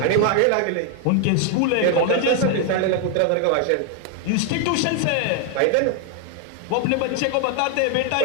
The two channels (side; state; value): both; different; correlation 0.00